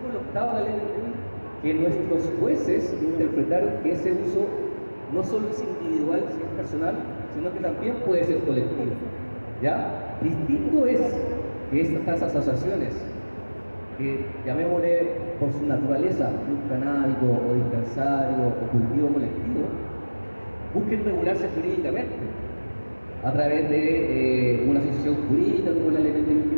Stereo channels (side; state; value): both; inverted; correlation -1.00